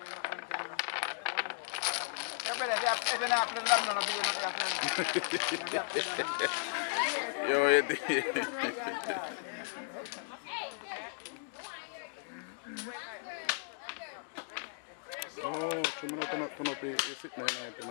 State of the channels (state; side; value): silent; right; digital silence